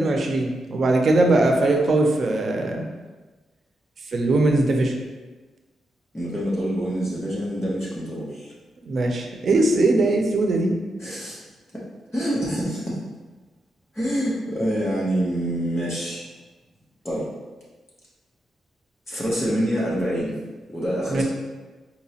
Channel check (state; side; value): normal; both; correlation 0.84